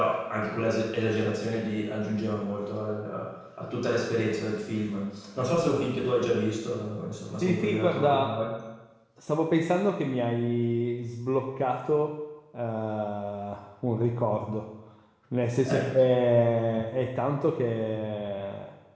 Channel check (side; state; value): both; identical; correlation 1.00